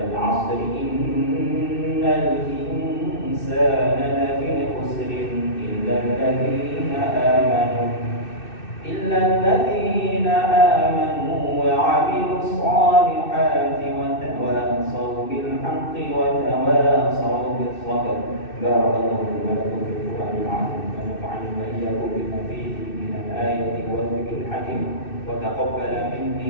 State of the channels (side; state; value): right; late; 2.6 ms